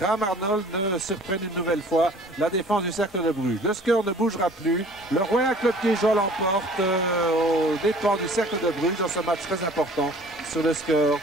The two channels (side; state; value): both; normal; correlation 0.50